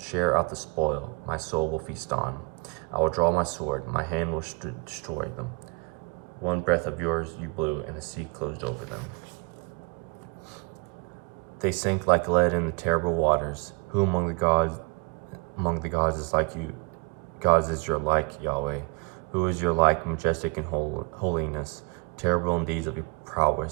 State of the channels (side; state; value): left; quieter; 27.6 dB